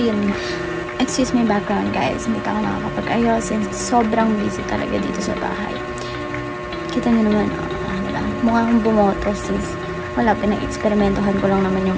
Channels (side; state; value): both; identical; correlation 1.00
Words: excuse my background guys. Hindi pa ako nakakapag-ayos since sobrang busy talaga dito sa bahay. Kita nyo naman, diba? Mukha akong bumoto sis. Wala, pinag-eksperimentohan ko lang naman yung